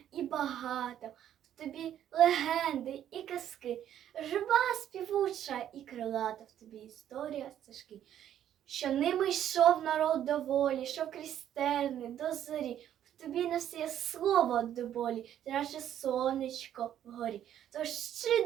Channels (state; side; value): quieter; left; 10.7 dB